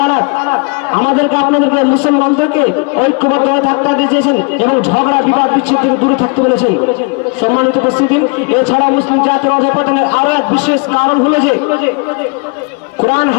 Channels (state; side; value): quieter; right; 33.8 dB